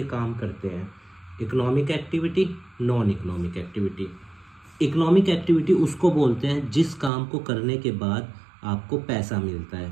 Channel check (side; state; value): left; drops out; at 7.1 s